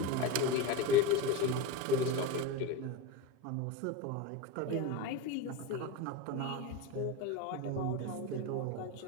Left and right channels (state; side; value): different; both; correlation 0.08